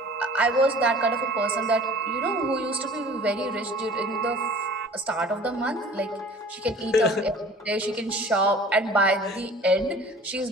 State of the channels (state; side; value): normal; both; correlation 0.46